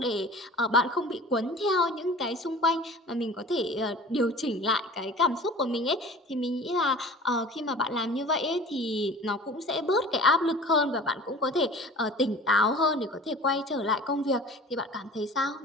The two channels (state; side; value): normal; both; correlation 0.42